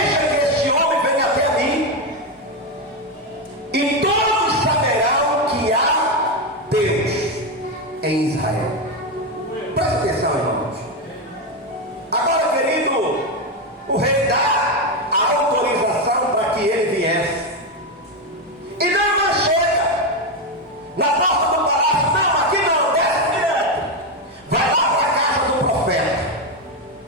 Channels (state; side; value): normal; both; correlation 0.09